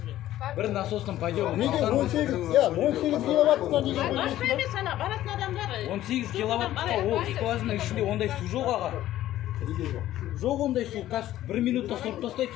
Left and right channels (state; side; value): quieter; right; 13.7 dB